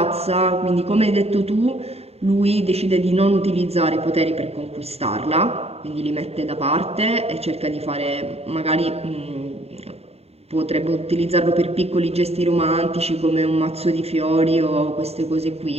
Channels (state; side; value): late; left; 0.30 ms